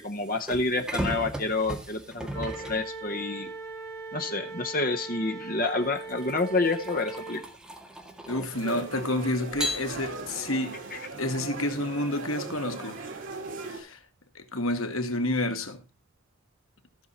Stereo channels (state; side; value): normal; both; correlation 0.24